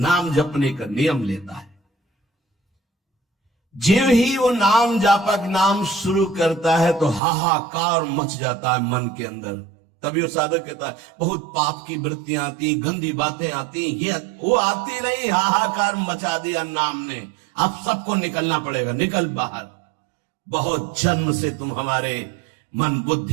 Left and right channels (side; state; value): left; drops out; at 7.2 s